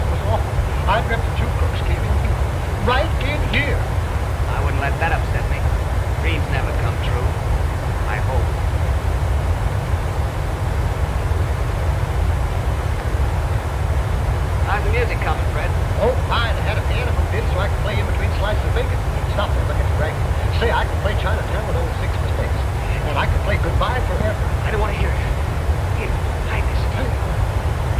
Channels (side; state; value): both; identical; correlation 1.00